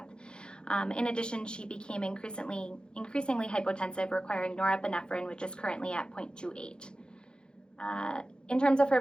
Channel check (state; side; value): late; right; 0.049 ms